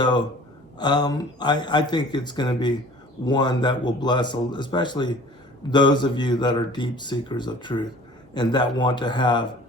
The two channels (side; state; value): both; normal; correlation 0.47